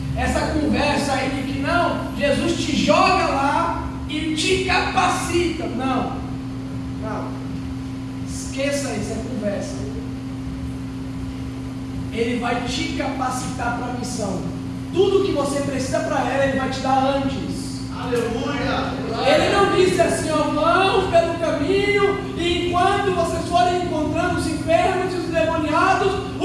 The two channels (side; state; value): both; identical; correlation 1.00